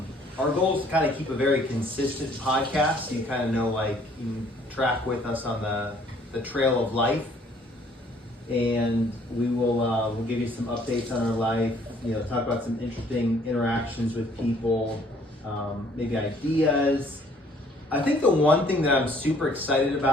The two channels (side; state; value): both; normal; correlation 0.60